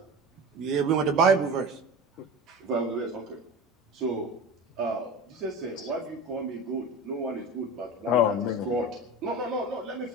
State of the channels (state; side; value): normal; both; correlation 0.31